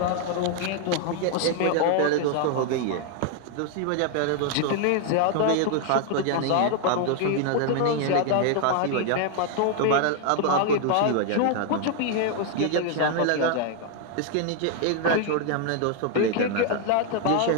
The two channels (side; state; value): both; different; correlation 0.00